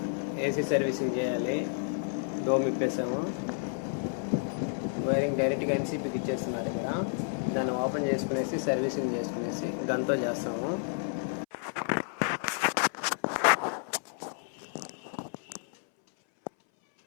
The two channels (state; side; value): silent; right; 57 dB below the other